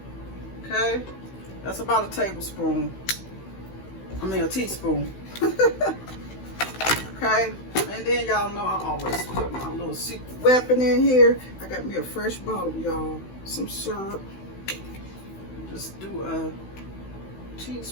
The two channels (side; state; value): right; late; 16 ms